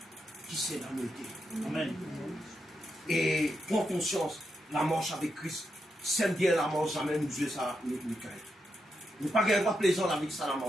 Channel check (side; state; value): both; normal; correlation 0.83